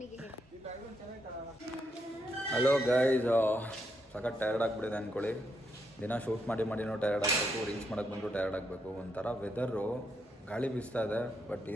ಹೇಳಿ. ಹಲೋ ಗೈಸ್, ಸಖತ್ ಟಯರ್ಡ್ ಆಗಿಬಿಟ್ಟಿದೆ ಅಂದ್ಕೊಳ್ಳಿ. ದಿನ ಶೂಟ್ ಮಾಡಿನೂ ಟಯರ್ಡ್ ಆಗಬೇಕು, ರೀಲ್ಸ್ ಮಾಡೋಕ್ಕೆ ಬಂದರೂ ಟಯರ್ಡ್ ಆಗಬೇಕು. ಒಂಥರ ವೆದರು ಗಾಳಿ ಬೀಸ್ತಾ ಇದೆ, ಬಟ್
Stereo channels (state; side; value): normal; both; correlation 0.79